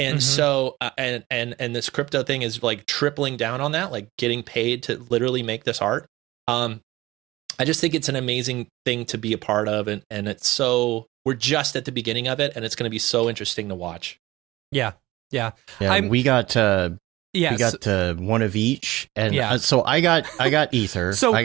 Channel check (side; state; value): left; quieter; 18.3 dB